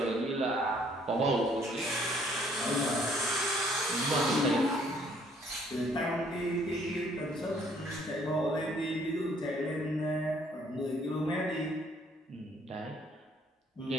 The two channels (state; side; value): normal; both; correlation 0.63